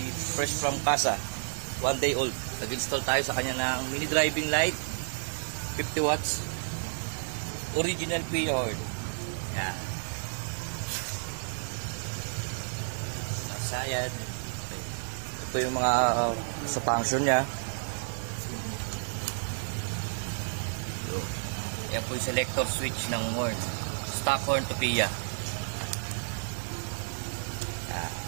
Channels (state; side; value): silent; left; digital silence